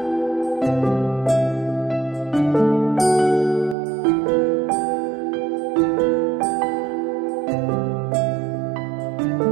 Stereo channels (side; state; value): left; drops out; at 3.8 s